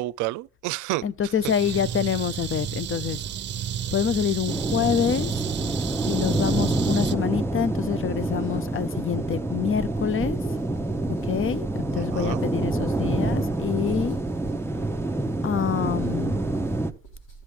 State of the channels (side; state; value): both; normal; correlation 0.54